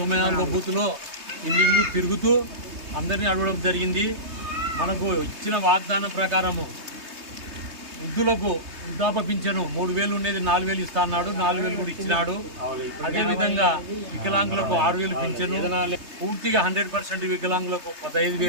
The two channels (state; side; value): late; left; 3.2 ms